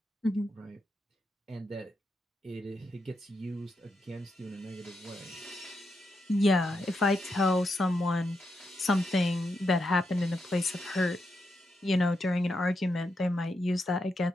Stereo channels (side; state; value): both; normal; correlation 0.84